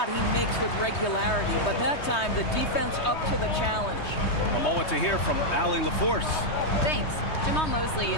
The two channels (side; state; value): right; late; 3.2 ms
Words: he makes with regularity, but that time the defense up to the challenge. A moment to hear from Allie LaForce. Thanks. Jamal Mosley